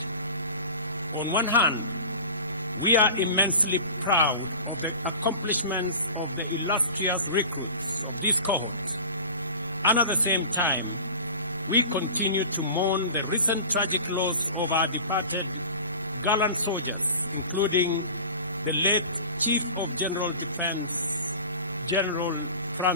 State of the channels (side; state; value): both; inverted; correlation -0.38